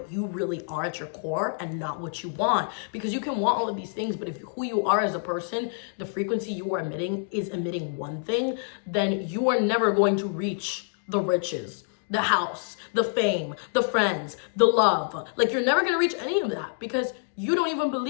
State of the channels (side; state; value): right; silent; digital silence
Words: you really are at your core and not what you want. Because you can want all of these things, but if who you are as a person, the frequency you are emitting is emitting one thing, then you are never going to reach the riches, the house, the fame, the friends, the love. Like, you're never gonna reach any of that because you don't even